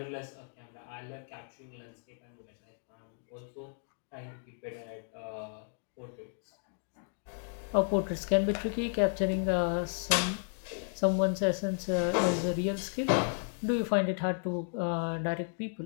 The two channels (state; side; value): silent; right; digital silence